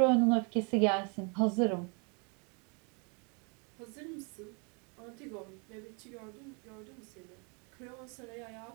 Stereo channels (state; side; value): quieter; left; 34.4 dB